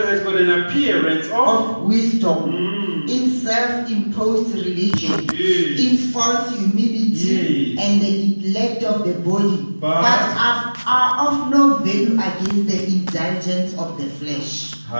got an appearance of Of wisdom in self-imposed religion, Yes. in false humility, Yes. and the neglect of the body, But- are of no value against the indulgence of the flesh.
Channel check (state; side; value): inverted; both; correlation -1.00